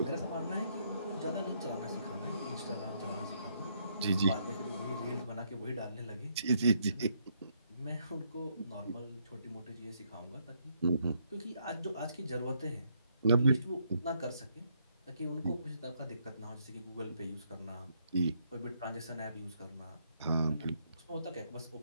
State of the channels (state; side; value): inverted; both; correlation -0.73